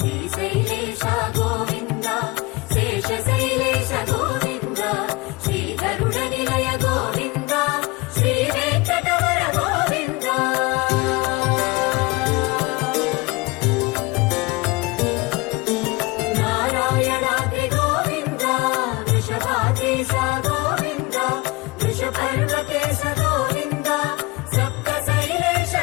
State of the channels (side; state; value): right; quieter; 23.9 dB